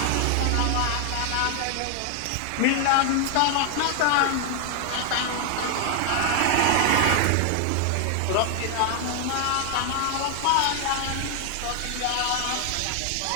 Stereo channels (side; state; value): both; different; correlation 0.00